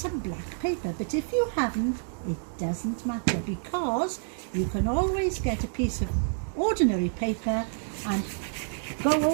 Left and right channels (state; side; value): silent; left; digital silence